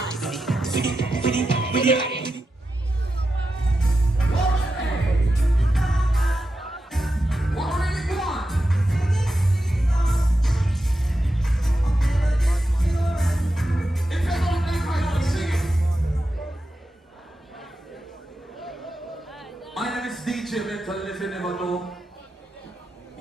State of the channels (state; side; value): normal; both; correlation 0.89